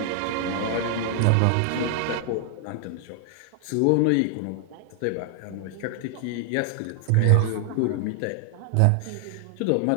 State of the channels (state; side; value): different; both; correlation 0.00